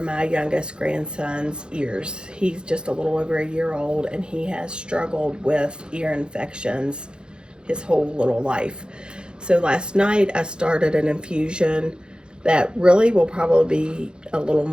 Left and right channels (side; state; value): left; late; 0.049 ms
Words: youngest grandson's ears. He's just a little over a year old, and he has struggled with ear infections his whole little life. So last night I started an infusion that really will probably be a little